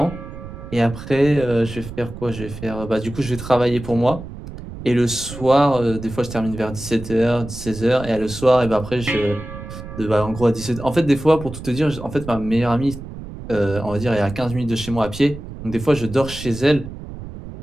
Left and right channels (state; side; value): noise; right; rumble, 12 dB below the sound